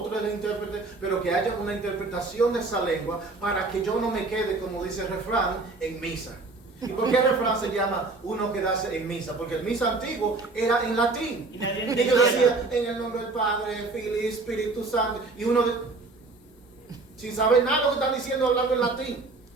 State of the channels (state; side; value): quieter; left; 3.6 dB